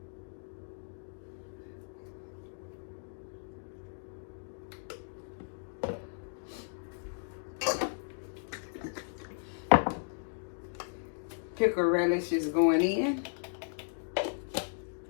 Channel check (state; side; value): silent; right; digital silence